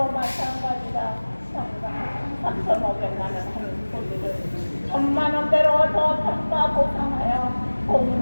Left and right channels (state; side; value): inverted; both; correlation -1.00